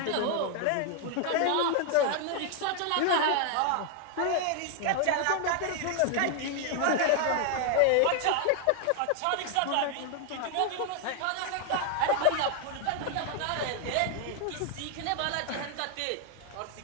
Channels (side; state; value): both; different; correlation 0.00